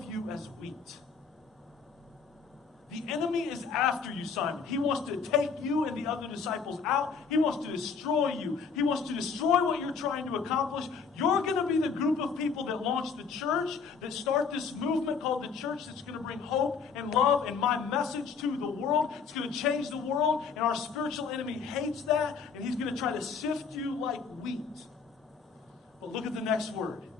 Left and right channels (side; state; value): right; quieter; 5.6 dB